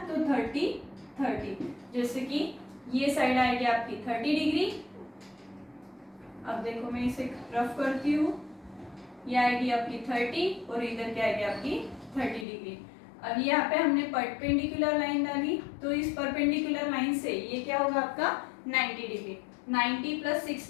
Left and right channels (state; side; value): drops out; right; at 12.5 s